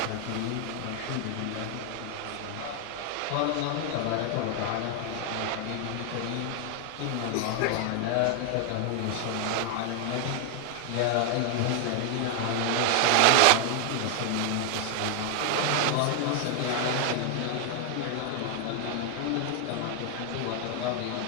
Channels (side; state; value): both; different; correlation 0.00